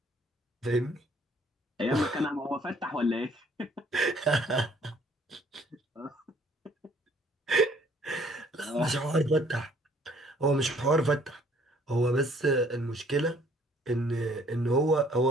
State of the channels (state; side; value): normal; both; correlation 0.60